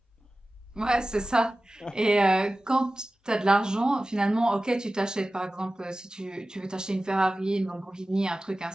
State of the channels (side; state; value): both; normal; correlation 0.96